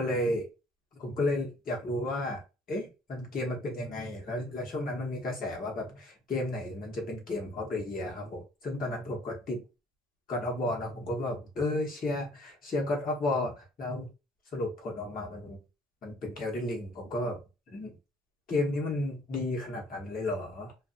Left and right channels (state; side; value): normal; both; correlation 0.57